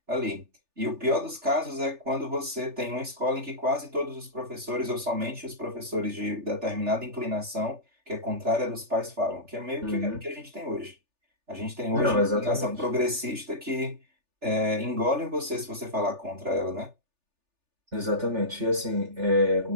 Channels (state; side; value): late; left; 3.4 ms